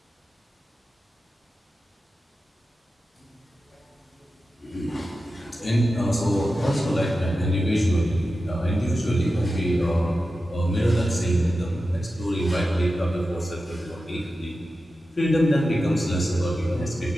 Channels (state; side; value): normal; both; correlation 0.92